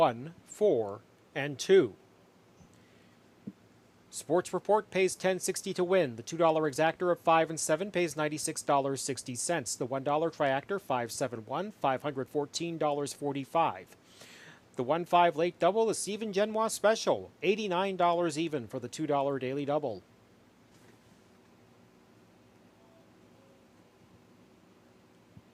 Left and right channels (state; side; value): identical; both; correlation 1.00